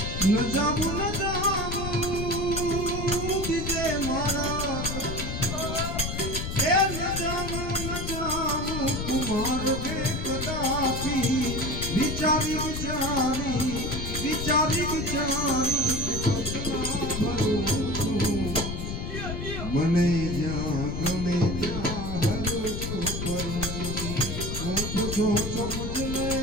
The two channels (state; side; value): noise; left; rumble, 4 dB below the sound